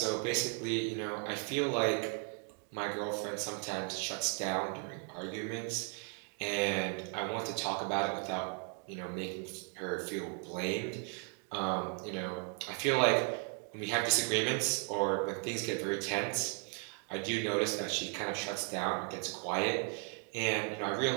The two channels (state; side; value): quieter; left; 39.6 dB